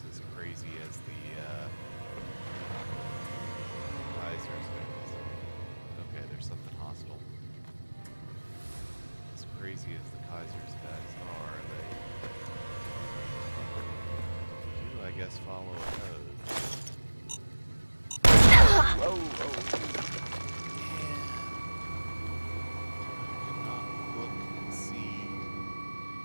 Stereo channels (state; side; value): inverted; both; correlation -1.00